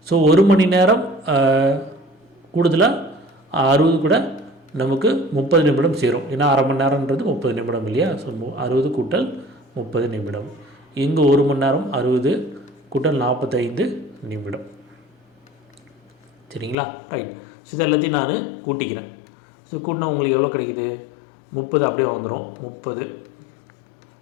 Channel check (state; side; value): drops out; right; at 16.8 s